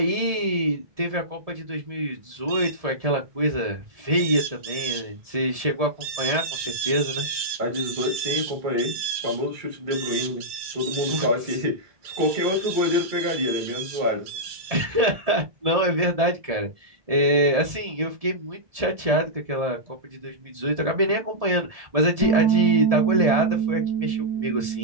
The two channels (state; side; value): late; left; 1.7 ms